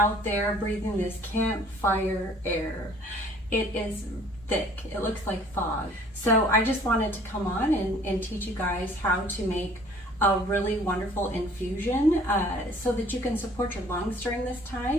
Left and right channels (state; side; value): normal; both; correlation 0.54